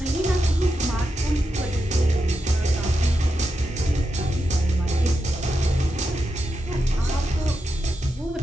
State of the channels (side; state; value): both; normal; correlation 0.87